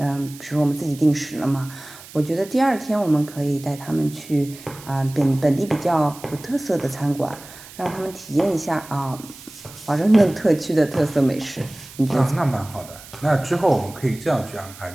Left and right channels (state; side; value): noise; right; hiss, 18 dB below the sound